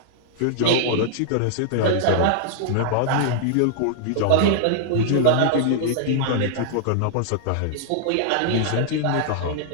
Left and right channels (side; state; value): both; different; correlation -0.01